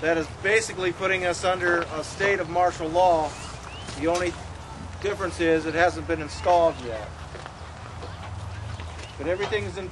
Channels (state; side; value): identical; both; correlation 1.00